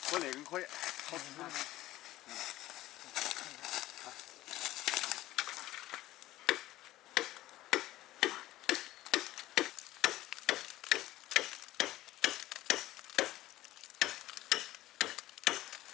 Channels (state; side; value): quieter; right; 15.9 dB